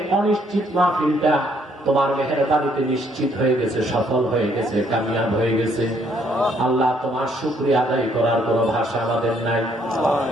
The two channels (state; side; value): normal; both; correlation 0.68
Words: অনিশ্চিত মাহফিলটা তোমার মেহেরবানিতে নিশ্চিত হয়ে গেছে, সফল হয়ে গেছে, কামিয়াব হয়ে গেছে। আল্লাহ তোমার শুকরিয়া আদায় করার কোন ভাষা আমাদের নাই।